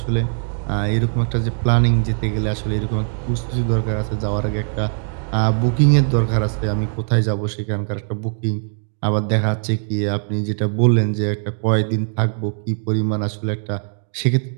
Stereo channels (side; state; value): left; silent; 65 dB below the other